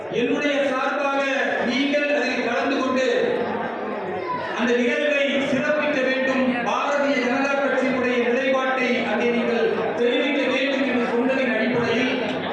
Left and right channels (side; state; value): both; identical; correlation 1.00